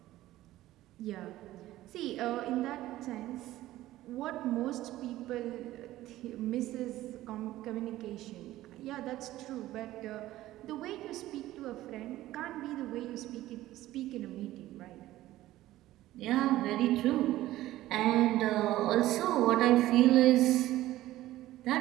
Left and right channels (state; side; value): quieter; left; 15.4 dB